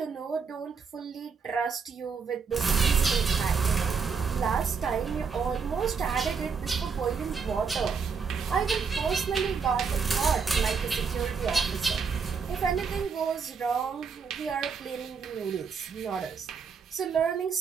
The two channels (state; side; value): quieter; left; 5.7 dB